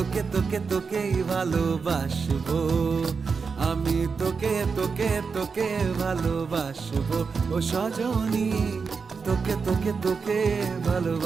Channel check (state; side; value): quieter; left; 5.2 dB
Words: তোকে তোকেই ভালোবাসবো আমি, তোকে তোকে তোকে ভালোবাসবো ও সজনী, তোকে তোকে তোকে